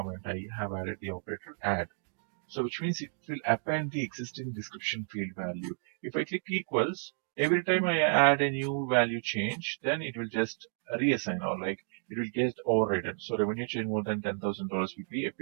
I have added the operator add. So which means it will append the existing description field value. If I click equals, every time I add a new value change, then it will just reassign or like it will get overridden. So revenue change more than $10,000 will be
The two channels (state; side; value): silent; left; 57 dB below the other